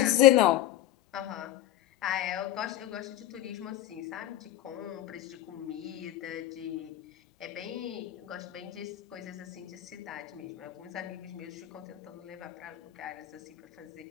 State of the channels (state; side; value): quieter; right; 13.7 dB